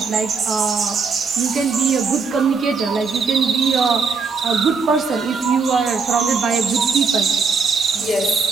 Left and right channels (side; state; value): left; quieter; 5.0 dB